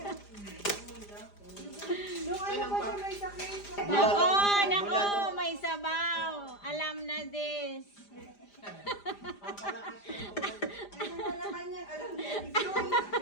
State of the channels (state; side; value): late; right; 5.0 ms